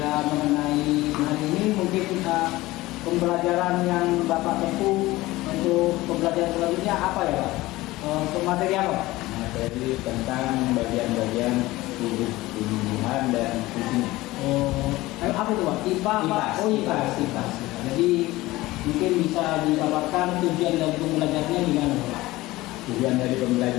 mengenai hari ini mungkin pembelajaran yang Bapak tempuh untuk pembelajaran selanjutnya apa ya Pak? Untuk materi apa? Materi tentang bagian-bagian tubuh tumbuhan dan fungsinya. Apa itu Pak? IPA Pak? IPAS. Jadi mungkin bisa dipaparkan tujuan dari pembelajarannya gimana Pak? Tujuan dari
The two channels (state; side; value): quieter; right; 18.7 dB